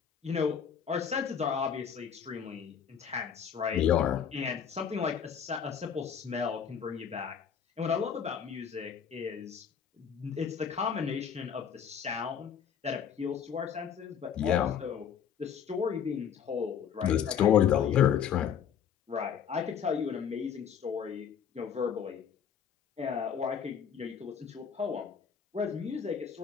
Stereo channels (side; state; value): right; quieter; 7.9 dB